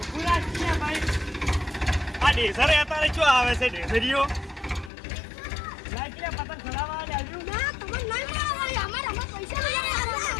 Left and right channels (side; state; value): right; drops out; at 4.9 s